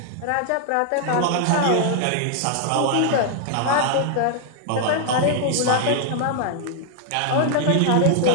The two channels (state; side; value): different; both; correlation 0.00